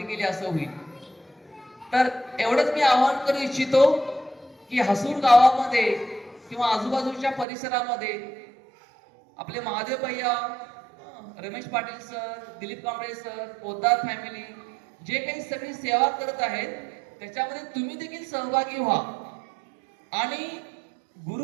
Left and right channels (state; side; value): drops out; left; at 7.5 s